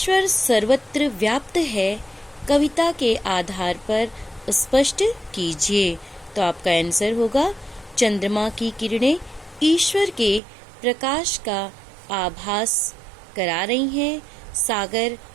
सर्वत्र व्याप्त है, कविता के आधार पर स्पष्ट कीजिए। तो आपका आंसर होगा, चंद्रमा की किरणें ईश्वर के प्रकाश का आभास करा रही हैं, सागर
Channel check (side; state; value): left; drops out; at 10.4 s